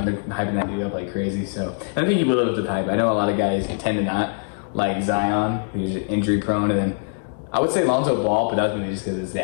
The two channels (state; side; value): silent; right; digital silence